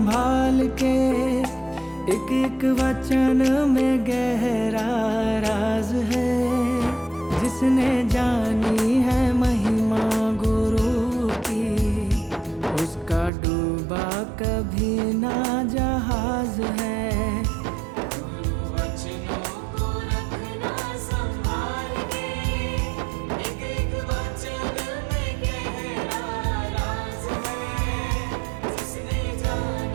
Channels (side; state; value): left; drops out; at 13.3 s